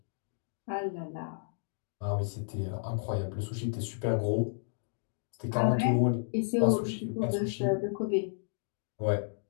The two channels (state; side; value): silent; right; digital silence